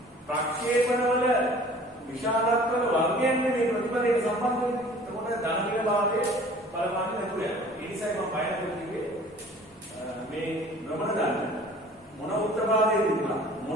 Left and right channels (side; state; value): both; normal; correlation 0.48